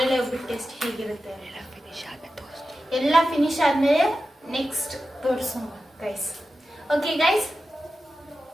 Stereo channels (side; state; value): both; normal; correlation 0.92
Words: ಒಬ್ಬಿಟ್ಟು ಟೇಸ್ಟ್ ಹೇಗಿರುತ್ತೆ. ಎಲ್ಲ ಫಿನಿಶ್ ಆದ್ಮೇಲೆ ನೆಕ್ಸ್ಟ್ ತೋರಿಸೋಣ guys. Okay guys.